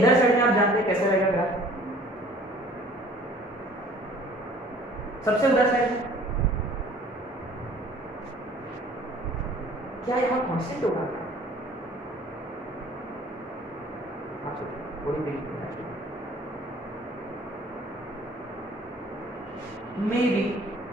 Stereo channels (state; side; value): normal; both; correlation 0.52